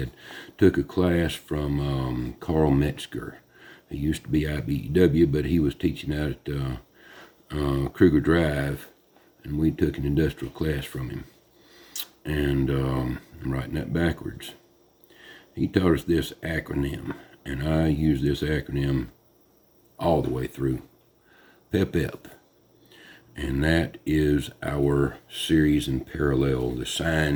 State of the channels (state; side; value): identical; both; correlation 1.00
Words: Took a class from Carl Metzger. He used to be IBEW, but he was teaching out at Kruger Drive, and we took an industrial class from him. And I'm writing that backwards. He taught us this acronym, and I use this acronym all the way through. PEP. And that is our series and parallel, the